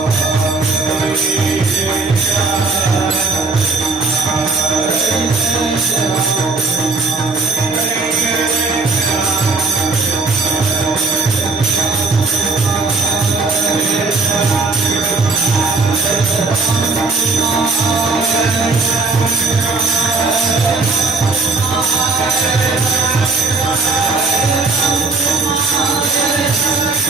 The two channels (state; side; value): quieter; left; 3.8 dB